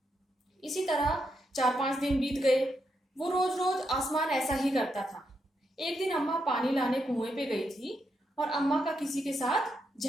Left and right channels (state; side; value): normal; both; correlation 0.82